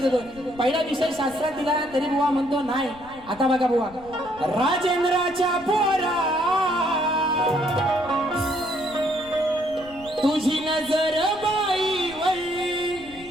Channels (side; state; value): left; noise; rumble, 21 dB below the sound